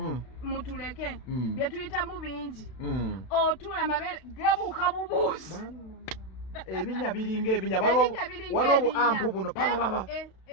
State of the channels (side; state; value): right; late; 32 ms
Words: Mutuleke bye tuyitamu bingi. Otula amabere gabuuka bubuusi. Ebinya biringa ebinya waliwo ampu buno papa